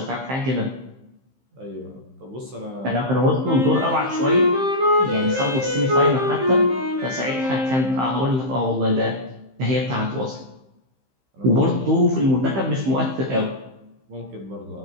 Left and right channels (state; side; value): late; left; 15 ms